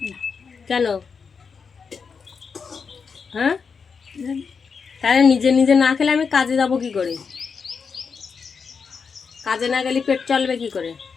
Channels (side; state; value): right; quieter; 5.6 dB